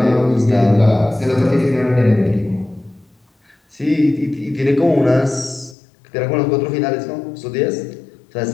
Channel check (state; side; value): drops out; right; at 5.8 s